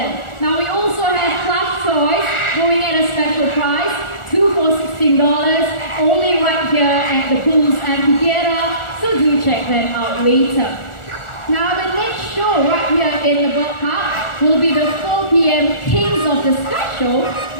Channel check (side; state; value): right; late; 1.4 ms